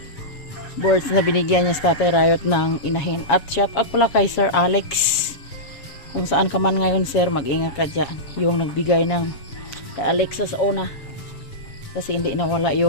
Boards na binigyan niya sa Tatay Riot ng inahin. At shout out pala kay Sir Alex. Kung saan ka man ngayon sir, mag-ingat ka dyan. Yung nagbigay ng kay Alexa sa una. Kasi hindi nawala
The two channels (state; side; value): late; right; 7.1 ms